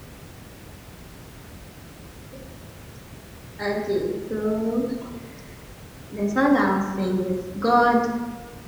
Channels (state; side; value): identical; both; correlation 1.00